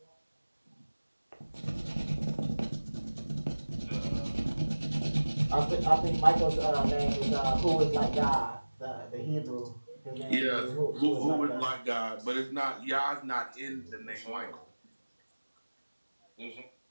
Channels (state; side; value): inverted; both; correlation -1.00